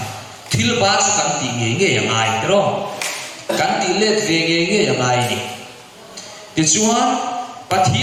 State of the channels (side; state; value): both; identical; correlation 1.00